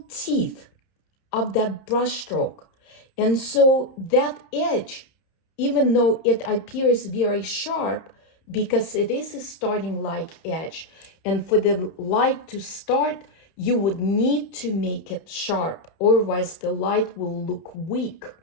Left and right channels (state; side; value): late; right; 30 ms